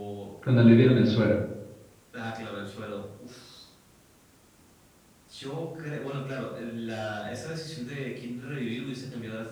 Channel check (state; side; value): identical; both; correlation 1.00